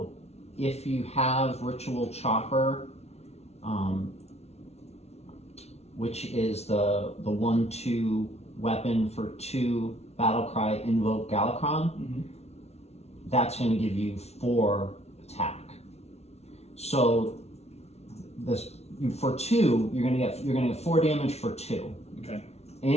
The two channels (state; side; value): late; right; 0.31 ms